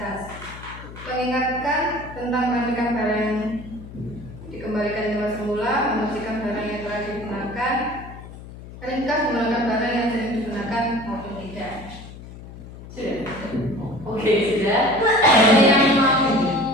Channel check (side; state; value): left; noise; hum, 15 dB below the sound